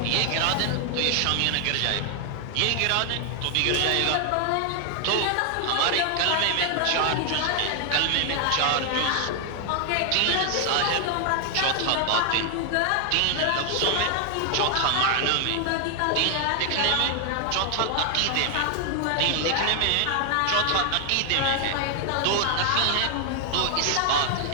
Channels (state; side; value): different; both; correlation 0.00